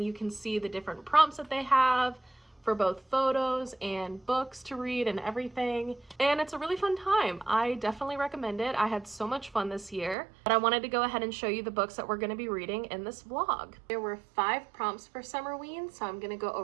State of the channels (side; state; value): left; drops out; at 10.2 s